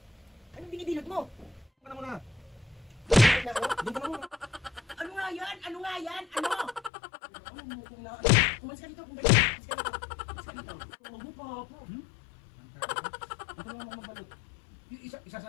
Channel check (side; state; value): right; drops out; at 6.9 s